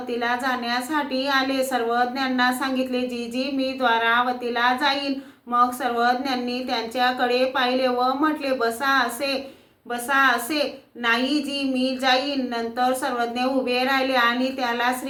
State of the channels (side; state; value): both; identical; correlation 1.00